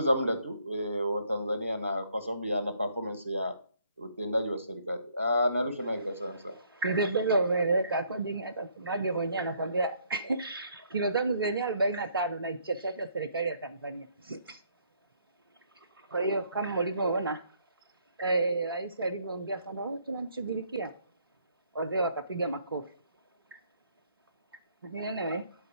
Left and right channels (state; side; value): inverted; both; correlation -0.67